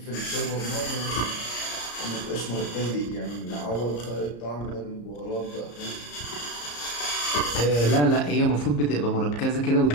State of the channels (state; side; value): late; right; 34 ms